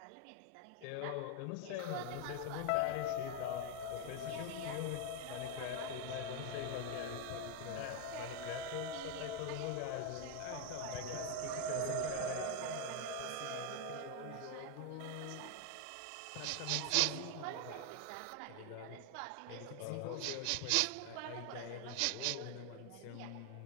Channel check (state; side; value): different; both; correlation 0.01